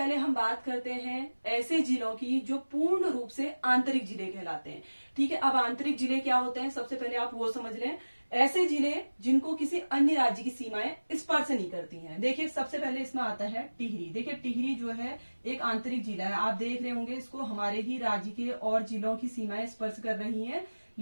हम बात करते हैं ऐसे जिलों की जो पूर्ण रूप से आंतरिक जिले कहलाते हैं, ठीक है। अब आंतरिक जिले क्या होते हैं सबसे पहले आप वो समझ लें। ऐसे जिले जिनको किसी अन्य राज्य की सीमाएं स्पर्श नहीं करती हैं। देखिए सबसे पहले इसमें आता है टिहरी। देखिए टिहरी जो है एक आंतरिक जिला है, आप देख रहे होंगे इसको हमारे ही राज्य के और जिलों की सीमाएं स्पर्श कर रही हैं,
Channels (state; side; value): inverted; both; correlation -1.00